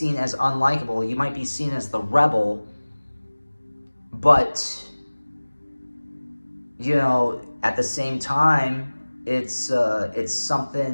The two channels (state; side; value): inverted; both; correlation -1.00